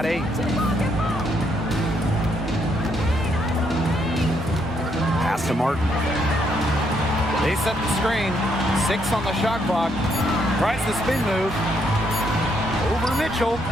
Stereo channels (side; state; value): both; normal; correlation 0.73